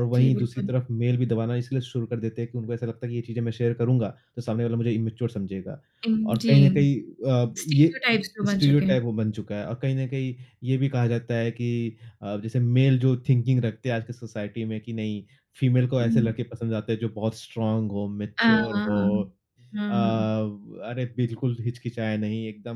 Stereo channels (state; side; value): identical; both; correlation 1.00